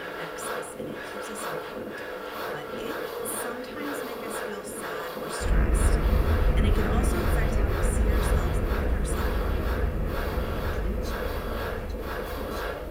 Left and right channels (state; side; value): identical; both; correlation 1.00